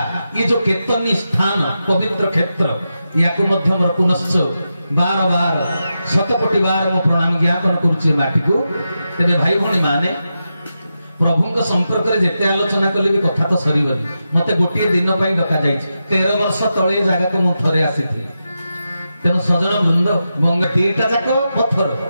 ये जो केतनी स्थान पवित्र क्षेत्र या मोर पुनश्च बार बार शतकोटी बार मो प्रणाम ज्ञापन करुचे माटी को तेरे भाई भौणी माने प्रभु संपर्क में जिते आलोचना कले भी कथा तो सरीबनी मते गोटे दिन पर डका जाइए 13 वर्ष तले जगह को मुझे आसी तेणु सजन वृंद गंगा दीटा जाक पत्थर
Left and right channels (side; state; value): both; inverted; correlation -0.89